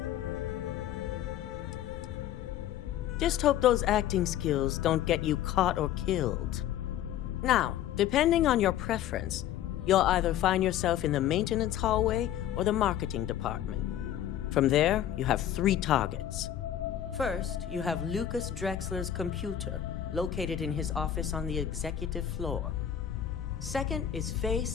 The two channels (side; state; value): right; quieter; 11.0 dB